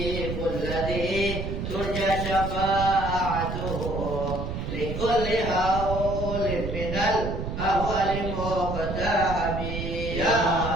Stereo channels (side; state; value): right; noise; rumble, 5 dB below the sound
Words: الذي ترجى شفاعته لكل هول من الأهوال مقتحم يا